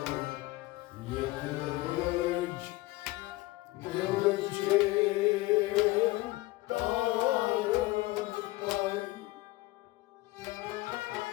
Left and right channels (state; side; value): quieter; right; 19.8 dB